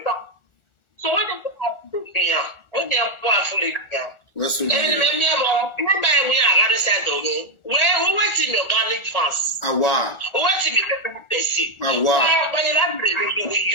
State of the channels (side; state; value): right; late; 1.4 ms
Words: So when they have to be here, when they are powerfully here. Yes, we we are rather said, where who went in organic fans? Who went in the person? But you